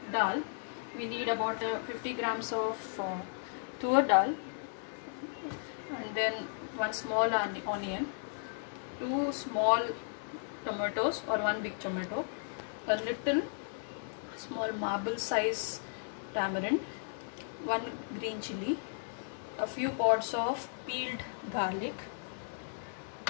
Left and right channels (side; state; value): right; silent; 54 dB below the other